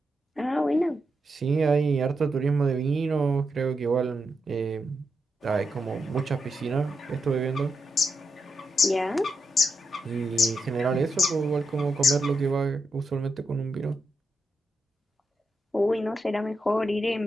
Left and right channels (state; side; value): normal; both; correlation 0.84